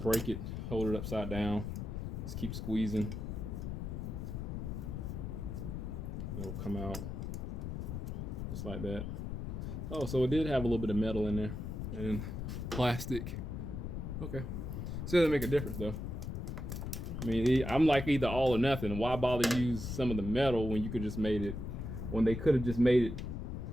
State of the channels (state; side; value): noise; left; rumble, 5 dB below the sound